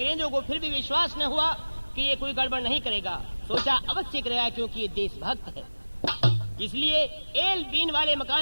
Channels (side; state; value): both; inverted; correlation -1.00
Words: को फिर भी विश्वास न हुआ कि ये कोई गड़बड़ नहीं करेगा। सोचा अवश्य करेगा क्योंकि ये देशभक्त है। इसलिए एल बीन वाले